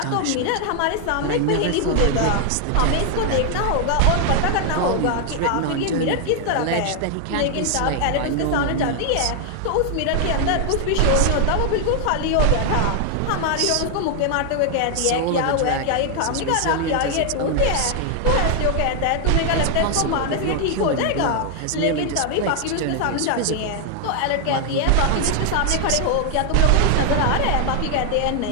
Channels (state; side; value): different; both; correlation 0.00